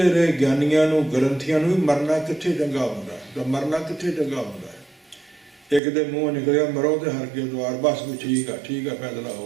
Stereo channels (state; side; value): drops out; left; at 5.8 s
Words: ਰਹੇ ਗਿਆਨੀਆਂ ਨੂੰ, ਗ੍ਰੰਥੀਆਂ ਨੂੰ ਵੀ ਮਰਨਾ ਕਿੱਥੇ ਚੰਗਾ ਹੁੰਦਾ, ਤਾਂ ਮਰਨਾ ਕਿੱਥੇ ਚੰਗਾ ਹੁੰਦਾ ਹੈ। ਇੱਕ ਦੇ ਮੂੰਹ ਨਿਕਲਿਆ ਮਰੋ ਤੇ ਹਰ ਕੇ ਦਵਾਰ, ਬਸ ਵੀ ਠੀਕ ਆ ਫੈਸਲਾ